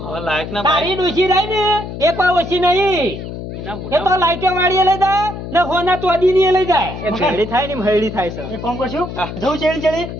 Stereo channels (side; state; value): left; noise; hum, 9 dB below the sound